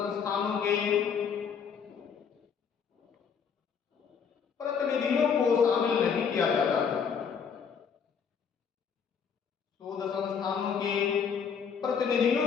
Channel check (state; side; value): quieter; right; 6.8 dB